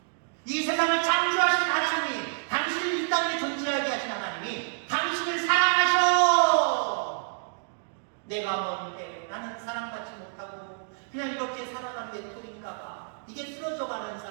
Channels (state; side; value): silent; left; digital silence